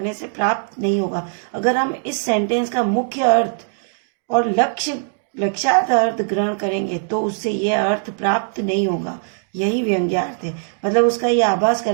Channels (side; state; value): left; silent; digital silence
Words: से प्राप्त नहीं होगा। अगर हम इस सेंटेंस का मुख्य अर्थ और लक्ष्यार्थ अर्थ ग्रहण करेंगे तो उससे यह अर्थ प्राप्त नहीं होगा। यही व्यंग्यार्थ है, मतलब उसका यह आभास